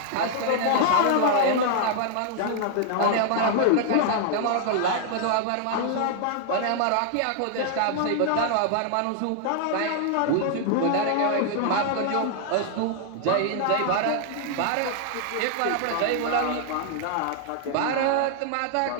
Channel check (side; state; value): both; different; correlation 0.00